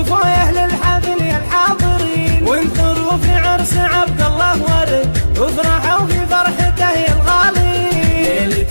يا اهل الحفل يا الحاضرين، وانثروا في عرس عبد الله ورد، وافرحوا في فرحته يا الغالين.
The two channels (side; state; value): both; inverted; correlation -1.00